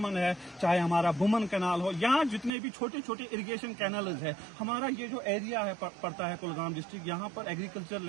ہے، چاہے ہمارا بومن کینال ہو، یا جتنے بھی چھوٹے چھوٹے اریگیشن کینالز ہے، ہمارا یہ جو ایریا ہے پڑتا ہے کلگام ڈسٹرکٹ، یہاں پر ایگریکلچر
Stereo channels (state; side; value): drops out; left; at 2.5 s